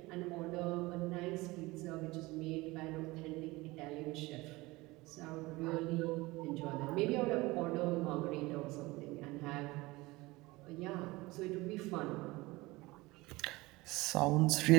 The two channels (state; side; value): quieter; left; 21.4 dB